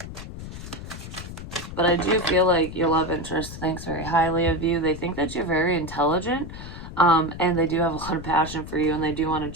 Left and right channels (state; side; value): noise; left; rumble, 11 dB below the sound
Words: But I do feel like your love interest thinks very highly of you. They think that you're very intelligent, and they do have a lot of passion for you, and they do want to